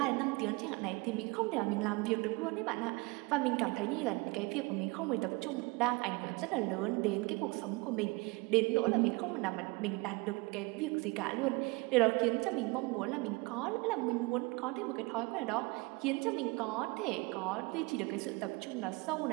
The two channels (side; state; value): left; quieter; 25.8 dB